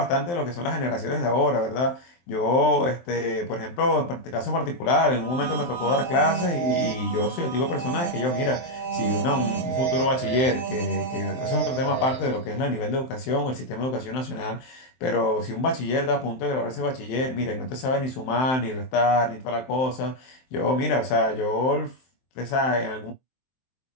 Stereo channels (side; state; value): right; late; 23 ms